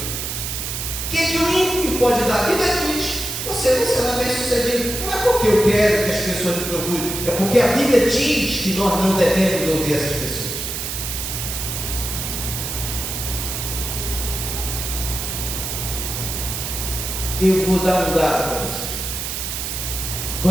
O que o ímpio pode dar? A Bíblia diz: você não será bem sucedido. Não é porque eu quero que as pessoas me procurem, é porque a Bíblia diz que nós não devemos ouvir essas pessoas. Eu vou dar um dado para vocês.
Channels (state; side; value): noise; right; hiss, 4 dB below the sound